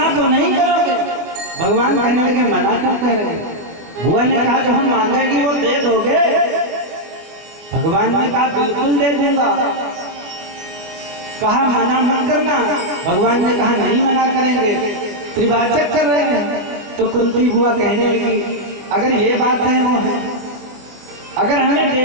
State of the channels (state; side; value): late; left; 24 ms